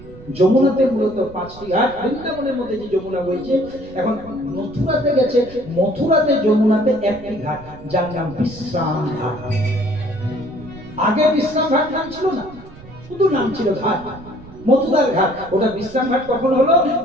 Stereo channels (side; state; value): right; noise; rumble, 19 dB below the sound